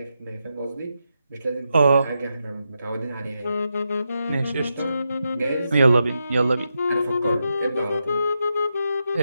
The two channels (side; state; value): both; inverted; correlation -0.86